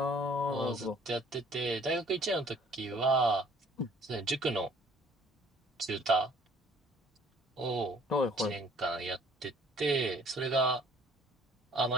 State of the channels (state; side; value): normal; both; correlation 0.57